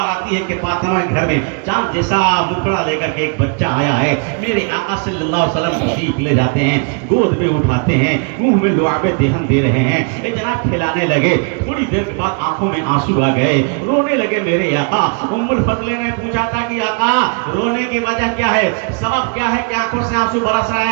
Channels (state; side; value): quieter; left; 36.2 dB